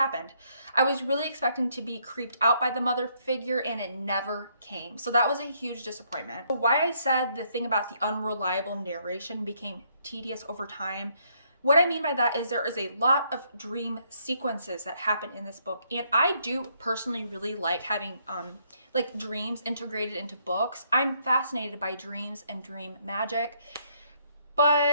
I was really expecting to be creeped out by the mother figure, and it never came. So that was a huge disappointment. Why I said the thing about the unreliable narration became tedious over time, what I mean by that is there is a lot of dream sequences that happen in this book. And I do personally really like having like dreams integrated into books. I'm fascinated by dreams and dream magic.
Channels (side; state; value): both; inverted; correlation -0.70